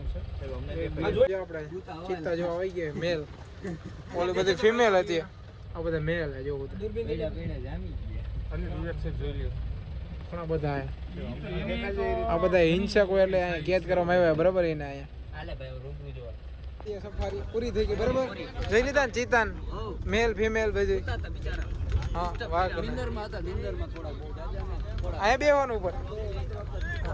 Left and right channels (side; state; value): both; identical; correlation 1.00